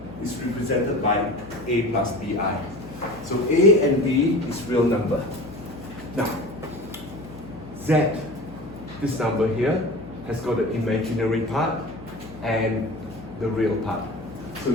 is represented by a plus bi. So a and b is real number. Now, z, this number here, has got an imaginary part and the real part. So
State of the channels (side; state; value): left; noise; hum, 16 dB below the sound